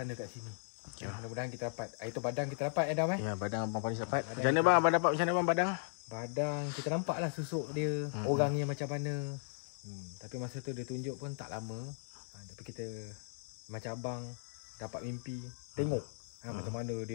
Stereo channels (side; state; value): right; silent; 53 dB below the other